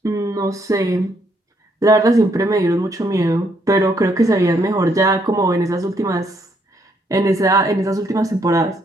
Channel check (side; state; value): both; normal; correlation 0.72